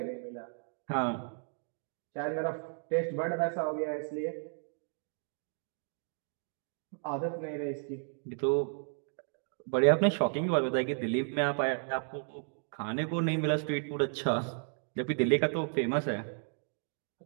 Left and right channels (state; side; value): silent; left; 55 dB below the other